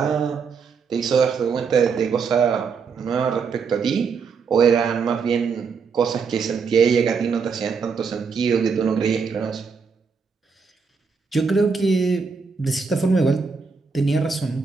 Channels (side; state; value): left; quieter; 5.4 dB